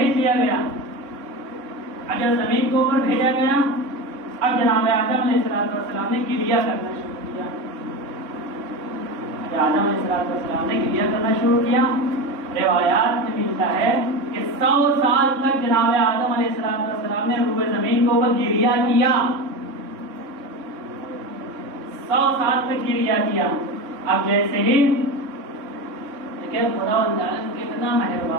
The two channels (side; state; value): left; late; 3.6 ms